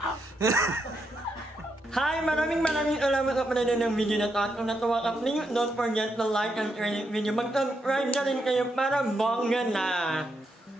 Hi! Maraming salamat sa panonood ng video na to. At kung natuwa ka, please don't forget to like and share the video. Mag-subscribe na rin kayo para bongga na.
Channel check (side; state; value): both; normal; correlation 0.81